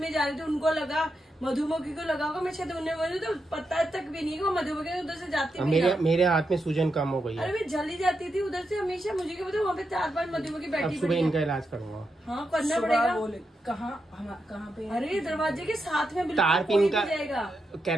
जा रही थी, उनको लगा मधुमक्खी को लगा होगा, मैं शायद उन्हें बोली तो पता तक भी नहीं कि वो मधुमक्खी उधर से जाती है। मेरे हाथ में सूजन कम हो गई है। अरे मैं जल्दी जाती थी उधर से हमेशा, मुझे क्या पता वहाँ पे 4-5 मधुमक्खी बैठी। सुबह इनका इलाज करूंगा। हाँ करना पड़ेगा। कहाँ पे? अरे दरवाजे के साथ में तार पिन का जाएगा,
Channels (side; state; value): both; normal; correlation 0.85